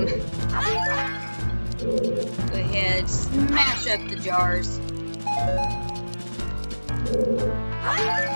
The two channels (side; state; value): both; inverted; correlation -1.00